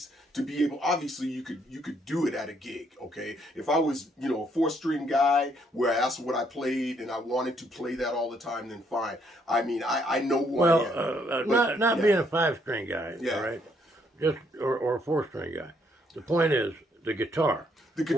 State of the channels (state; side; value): normal; both; correlation 0.70